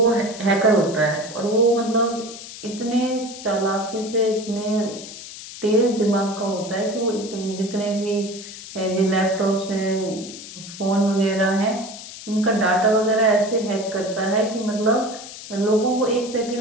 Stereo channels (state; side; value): noise; left; hiss, 13 dB below the sound